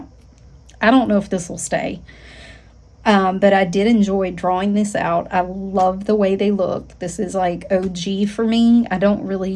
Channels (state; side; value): identical; both; correlation 1.00